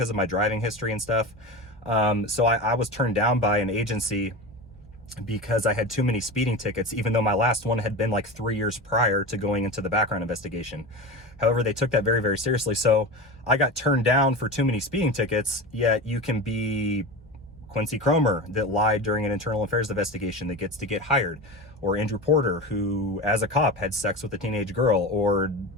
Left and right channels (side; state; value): both; normal; correlation 0.26